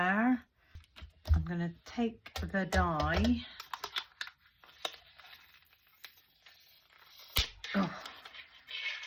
I'm going to take the die.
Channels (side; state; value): both; identical; correlation 1.00